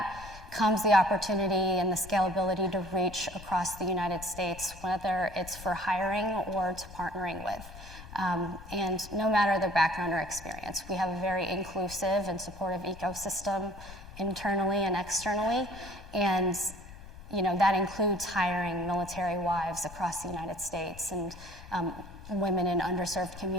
comes the opportunity and the scalability to reach across the United States, whether it's for hiring or to partnering with. And no matter their background or experience, we have a very inclusive and supportive ecosystem internally and externally. And that includes hiring military wives across the United States and women in underserved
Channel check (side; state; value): left; noise; rumble, 16 dB below the sound